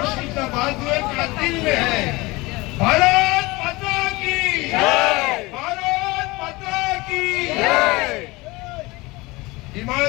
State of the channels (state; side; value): quieter; right; 22.6 dB